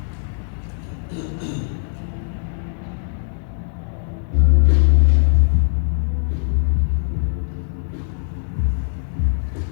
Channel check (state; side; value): silent; right; digital silence